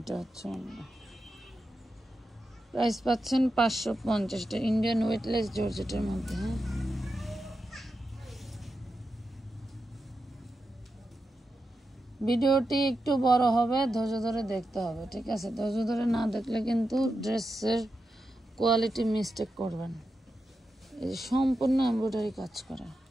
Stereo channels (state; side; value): normal; both; correlation 0.89